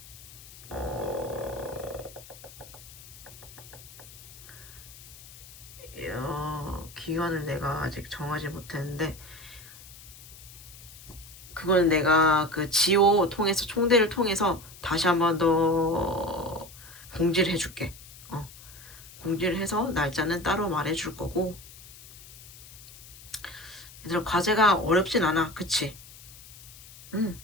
기간을 내가 아직 정하지 못했는데, 그건 내가 그 지오 통해서 총대를 통해서 다시 한 번 더 공지를 해줄게. 공지를 해서 날짜는 따로 말해줄 거고. 얘들아, 과제가 어렵진 않아, 그치?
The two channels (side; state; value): left; noise; hiss, 18 dB below the sound